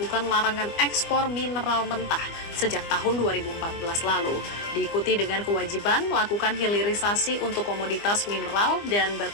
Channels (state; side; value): late; right; 25 ms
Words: larangan ekspor mineral mentah sejak tahun 2014 lalu, diikuti dengan kewajiban melakukan hilirisasi untuk komoditas mineral dan